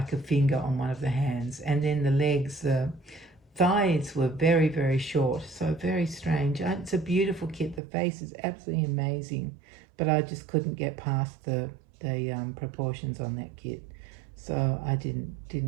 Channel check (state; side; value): drops out; left; at 7.8 s